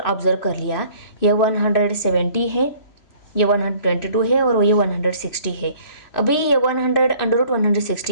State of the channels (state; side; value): late; right; 3.0 ms